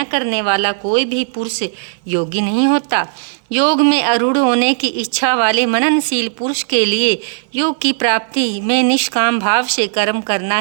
करने वाला कोई भी पुरुष योगी नहीं होता। योग में आरूढ़ होने की इच्छा वाले मननशील पुरुष के लिए योग की प्राप्ति में निष्काम भाव से कर्म करना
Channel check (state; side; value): silent; left; 64 dB below the other